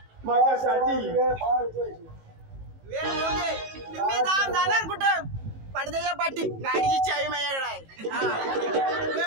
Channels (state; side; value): late; left; 18 ms